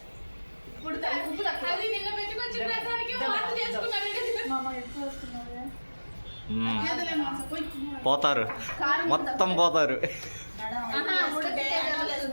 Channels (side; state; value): both; inverted; correlation -1.00